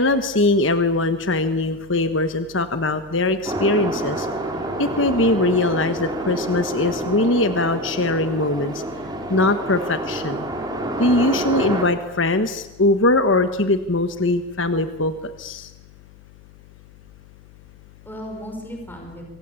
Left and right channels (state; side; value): noise; left; hum, 25 dB below the sound